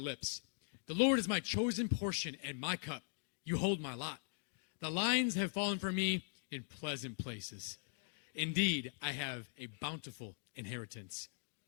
The Lord is my chosen portion and my cup. You hold my lot. The lines have fallen for me in pleasant places. Indeed, I have a bountiful inheritance.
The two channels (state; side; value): silent; right; digital silence